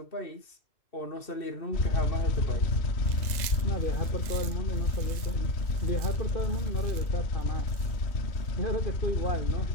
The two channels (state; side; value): late; right; 2.0 ms